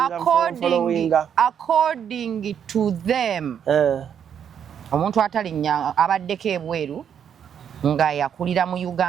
according to them omuntu atalinnya abaddeko ebweru nga yakulira mu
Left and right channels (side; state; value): left; quieter; 8.4 dB